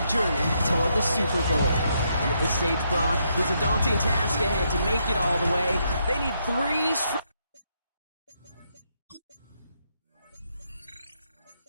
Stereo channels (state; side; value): inverted; both; correlation -0.77